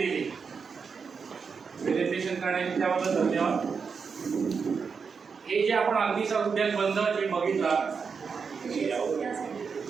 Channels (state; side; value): quieter; left; 5.7 dB